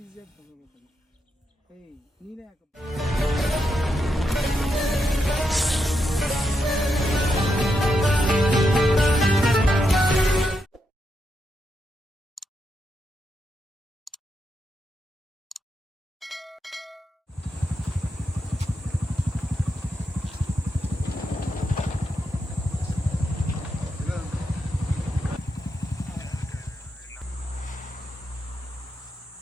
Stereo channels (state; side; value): normal; both; correlation 0.83